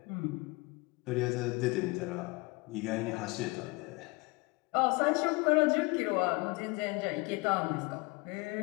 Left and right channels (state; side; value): quieter; right; 26.4 dB